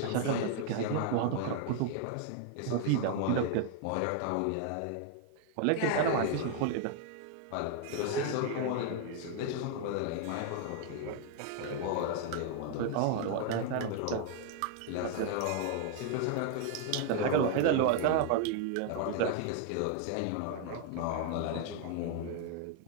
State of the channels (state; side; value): different; both; correlation 0.00